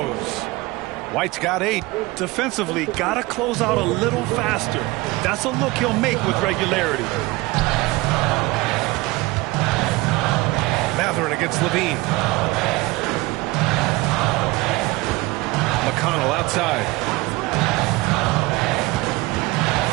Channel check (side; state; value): left; quieter; 21.7 dB